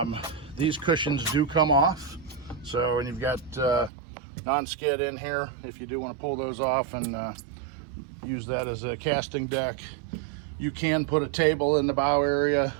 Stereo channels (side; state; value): left; drops out; at 3.9 s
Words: These cushions do come off. So, and you've got non-skid in here if you do want to pull those off and use that as a casting deck. You can put a table in the bow area.